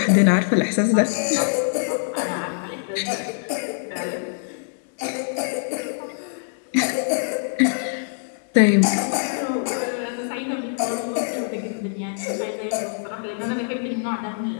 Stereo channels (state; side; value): silent; right; digital silence